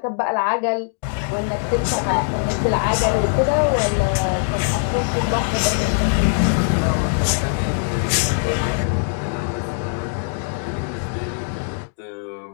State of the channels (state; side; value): silent; right; digital silence